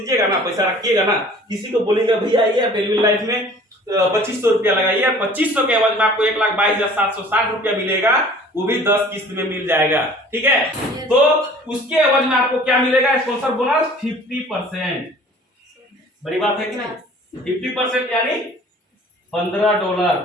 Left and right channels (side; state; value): both; normal; correlation 0.49